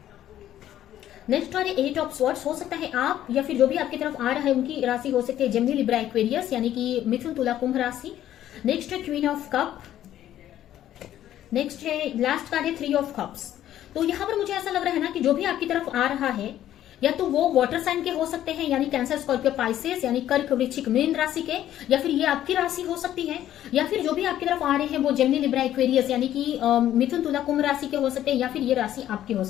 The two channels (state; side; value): quieter; right; 12.1 dB